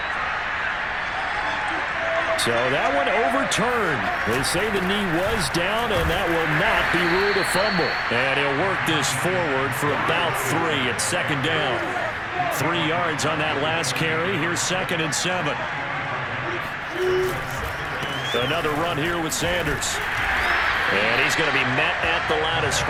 So that one overturned. They say the knee was down, and that will not be ruled a fumble. And he'll work this forward for about 3 at 2nd down. 3 yards on that last carry. Here's 2nd and 7. Another run here with Sanders. And he's going to be met at the line of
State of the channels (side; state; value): both; identical; correlation 1.00